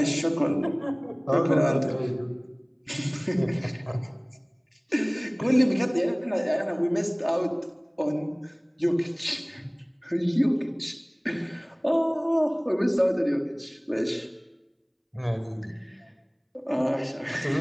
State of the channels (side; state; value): both; identical; correlation 1.00